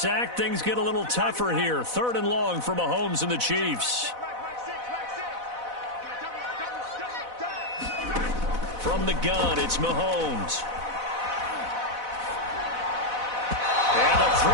things get a little tougher here. 3rd and long for Mahomes and the Chiefs. From the gun, it's Mahomes. And the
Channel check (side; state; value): left; late; 4.0 ms